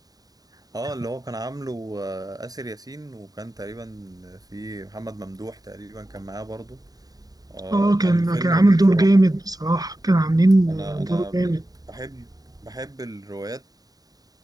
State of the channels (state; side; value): late; left; 0.18 ms